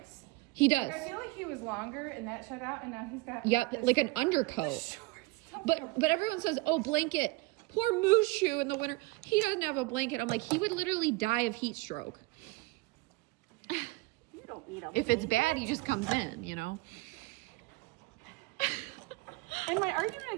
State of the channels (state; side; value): quieter; left; 22.5 dB